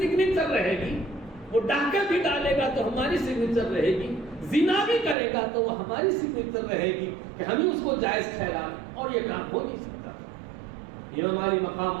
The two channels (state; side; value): drops out; left; at 5.2 s